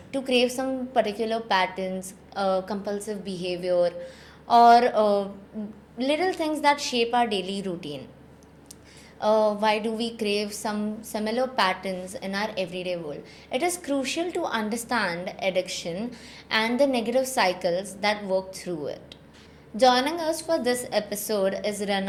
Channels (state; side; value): identical; both; correlation 1.00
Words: to crave some particular patterns, compulsive behavior, or little things that shape our daily routine? Why do we crave some similar patterns in our everyday world? It is crucial to understand addiction and the negative cycles that work through it. Joining us for this episode is